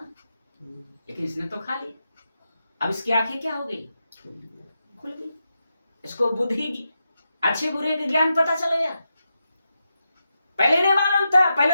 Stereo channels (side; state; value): both; inverted; correlation -0.87